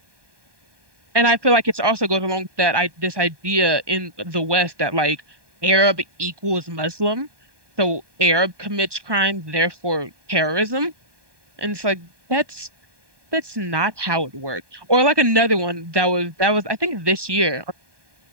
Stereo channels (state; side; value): late; left; 1.2 ms